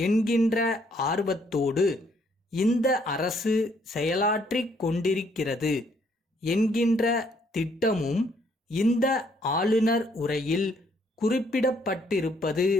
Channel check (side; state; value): both; normal; correlation 0.68